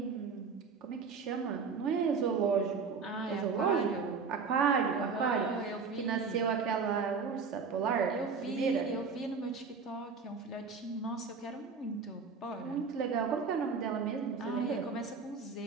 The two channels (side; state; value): left; quieter; 5.2 dB